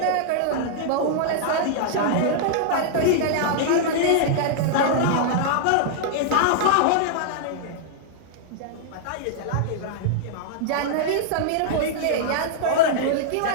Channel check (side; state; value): both; different; correlation -0.01